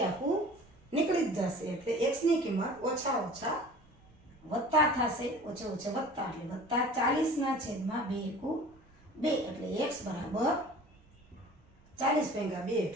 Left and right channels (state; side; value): normal; both; correlation 0.44